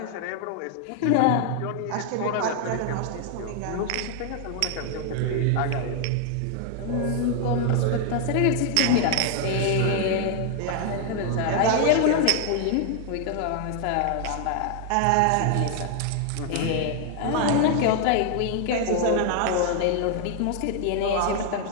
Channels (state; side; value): different; both; correlation 0.00